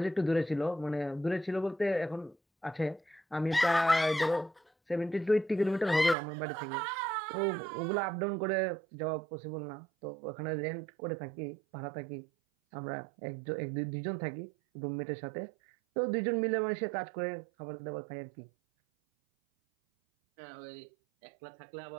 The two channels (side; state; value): left; drops out; at 6.2 s